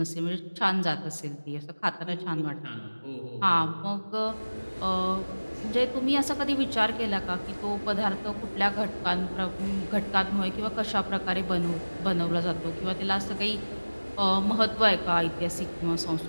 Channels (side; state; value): both; inverted; correlation -1.00